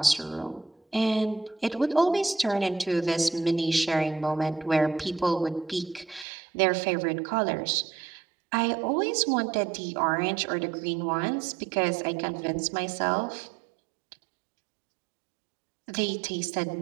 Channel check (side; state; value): left; drops out; at 6.2 s